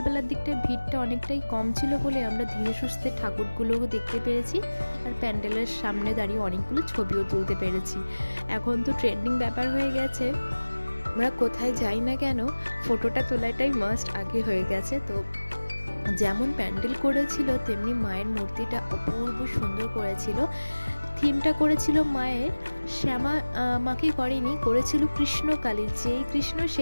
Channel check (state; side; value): inverted; both; correlation -1.00